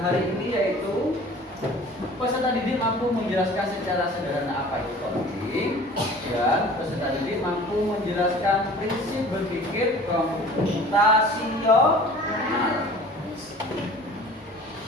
ini yaitu peserta didik mampu menjelaskan secara sederhana apa itu coding, dan peserta didik mampu menjelaskan prinsip berpikir komputasional.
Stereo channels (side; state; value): both; normal; correlation 0.46